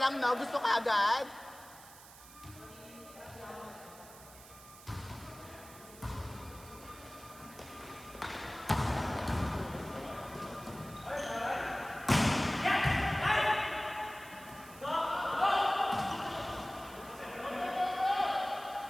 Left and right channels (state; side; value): noise; right; hiss, 19 dB below the sound